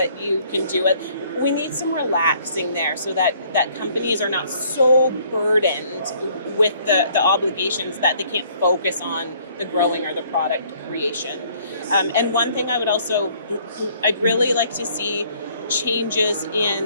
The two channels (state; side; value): inverted; both; correlation -0.61